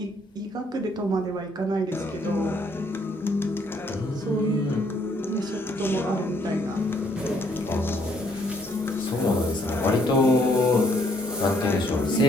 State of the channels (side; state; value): both; normal; correlation 0.67